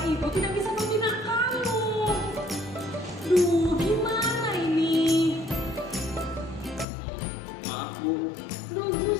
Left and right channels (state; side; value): drops out; right; at 6.9 s